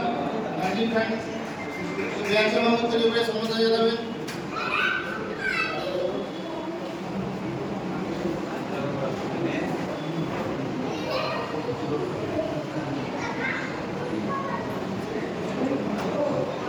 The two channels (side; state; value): both; identical; correlation 1.00